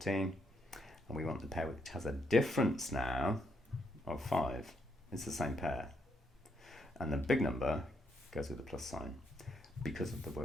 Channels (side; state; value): both; normal; correlation 0.76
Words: And we want the pair which has a difference now of 5. It's the same pair. And the big number goes with the plus sign because of the